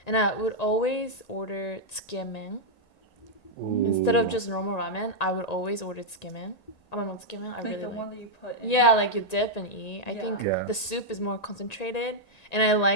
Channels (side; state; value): right; late; 1.9 ms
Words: and I would always order tsukemen. Instead of just normal ramen, I would always order tsukemen. I don't know tsukemen. I really the like. one that you put in. Yeah, you dip and eat. I think Yeah. the soup is more concentrated, and I